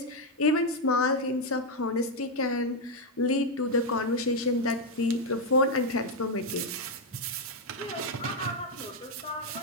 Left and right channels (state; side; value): normal; both; correlation 0.03